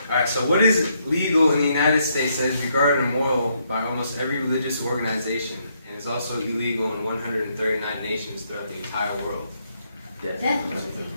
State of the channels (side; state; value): both; inverted; correlation -0.75